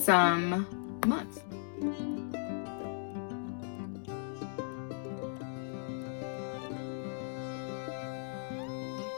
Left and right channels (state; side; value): silent; right; 53 dB below the other